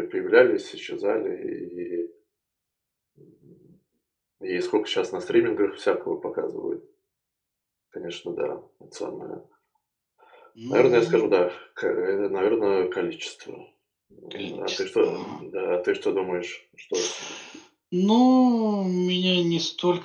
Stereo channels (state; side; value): identical; both; correlation 1.00